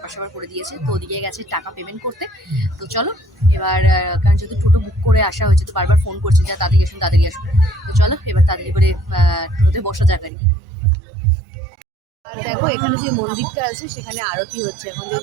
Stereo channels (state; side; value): drops out; left; at 10.3 s